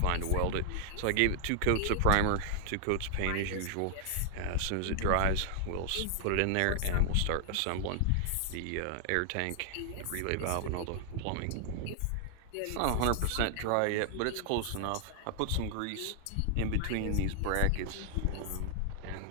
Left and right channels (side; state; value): both; different; correlation 0.00